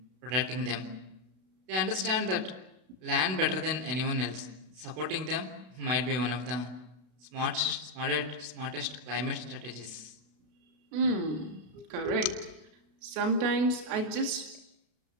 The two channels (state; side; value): late; left; 32 ms